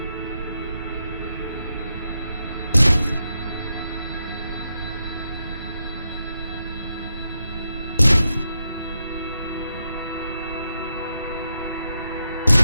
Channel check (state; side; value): inverted; both; correlation -0.84